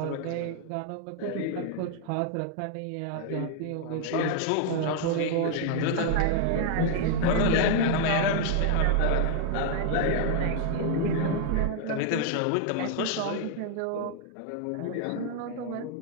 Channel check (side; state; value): both; different; correlation 0.00